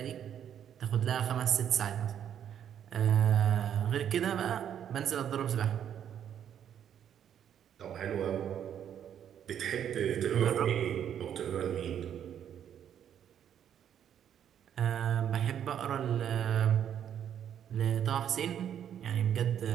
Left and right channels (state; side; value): quieter; left; 9.4 dB